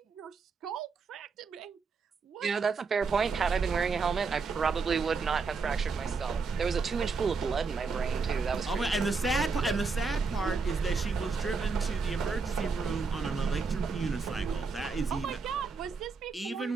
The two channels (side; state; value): left; quieter; 4.7 dB